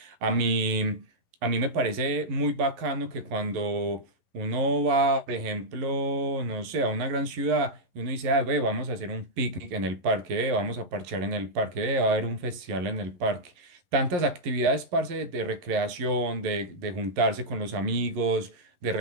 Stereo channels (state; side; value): late; left; 11 ms